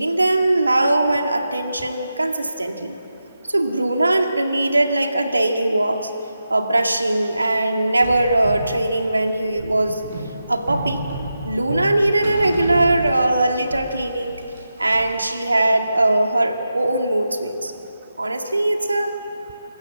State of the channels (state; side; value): inverted; both; correlation -0.90